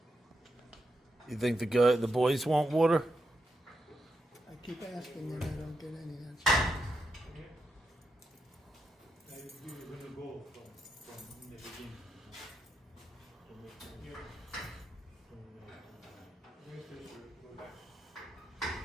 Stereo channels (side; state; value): both; normal; correlation 0.84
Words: You think the boys want water? I keep asking and I don't get any answer.